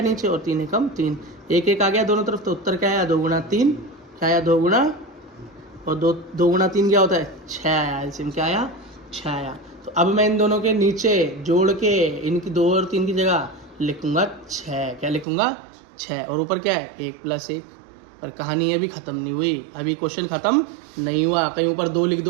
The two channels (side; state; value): left; drops out; at 15.2 s